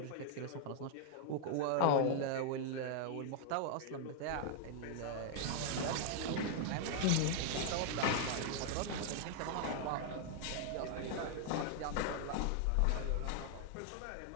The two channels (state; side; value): different; both; correlation 0.00